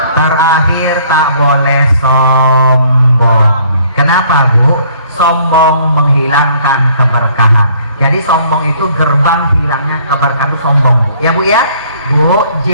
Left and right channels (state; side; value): inverted; both; correlation -0.59